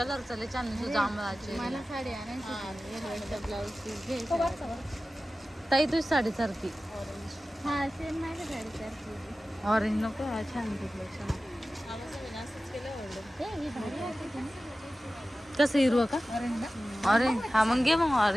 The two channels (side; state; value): both; normal; correlation 0.95